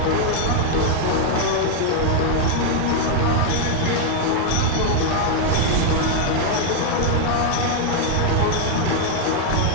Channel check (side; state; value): both; different; correlation 0.00